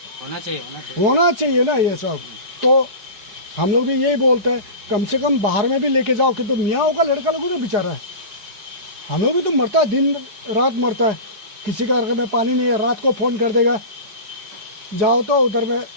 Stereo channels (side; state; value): left; late; 4.8 ms